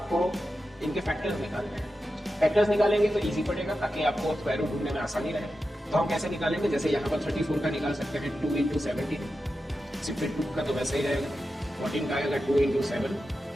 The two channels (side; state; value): both; normal; correlation 0.91